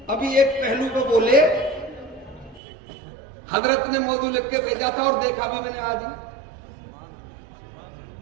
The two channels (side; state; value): left; drops out; at 2.6 s